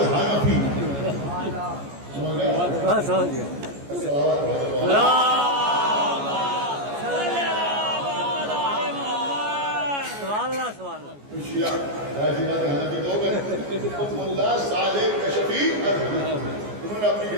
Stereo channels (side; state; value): left; late; 14 ms